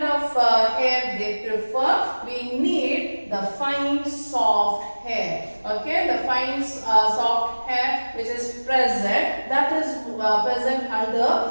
of hair they prefer? We need the fine soft hair. Okay, the fine soft hair which is present, that is present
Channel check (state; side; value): inverted; both; correlation -1.00